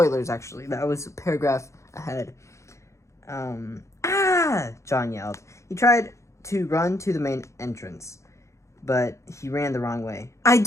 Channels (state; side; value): late; right; 0.14 ms